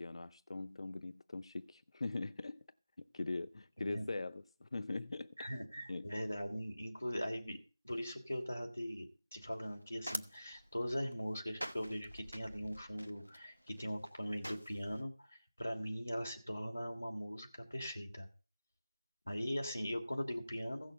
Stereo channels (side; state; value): both; inverted; correlation -0.96